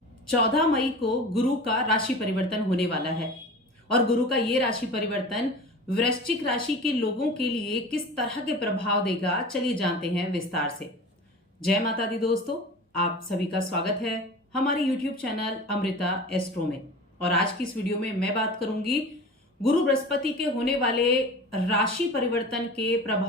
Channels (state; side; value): normal; both; correlation 0.36